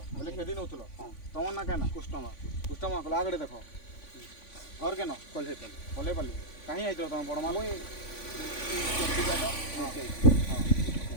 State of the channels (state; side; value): late; right; 3.5 ms